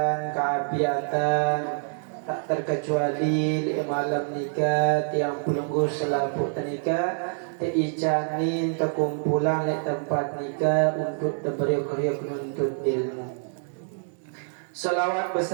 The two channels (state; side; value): silent; left; digital silence